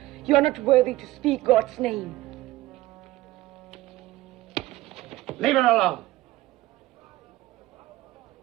You are not worthy to speak God's name. Leave her alone.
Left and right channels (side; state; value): left; quieter; 17.3 dB